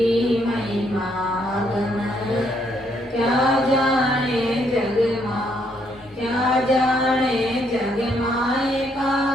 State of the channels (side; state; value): both; normal; correlation 0.72